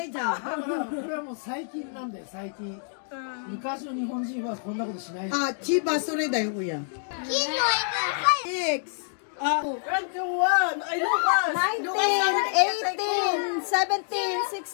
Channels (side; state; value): right; silent; digital silence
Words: れはもう最近なんだよ、最近。昔の日本人はこんなことしない。あ、千葉それだよ、親。X。19, 18, 17,